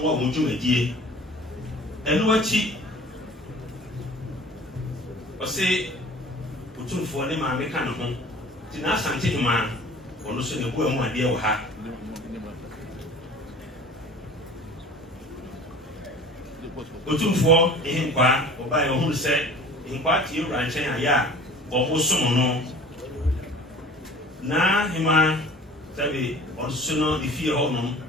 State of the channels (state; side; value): normal; both; correlation 0.44